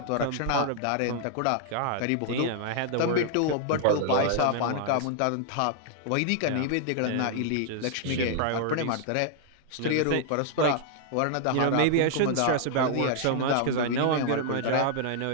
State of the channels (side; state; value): both; different; correlation -0.01